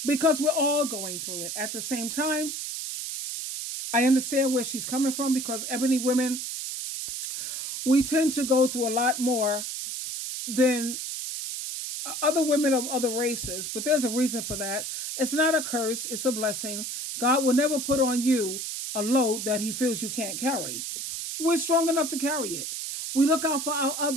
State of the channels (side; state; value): right; noise; hiss, 5 dB below the sound